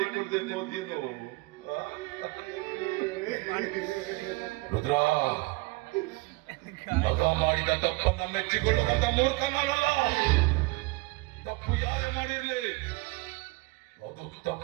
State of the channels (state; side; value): quieter; left; 23.9 dB